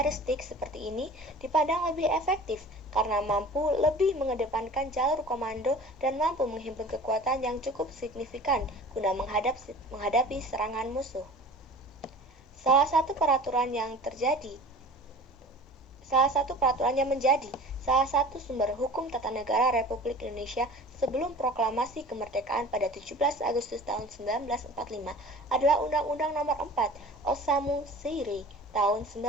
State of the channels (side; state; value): both; normal; correlation 0.41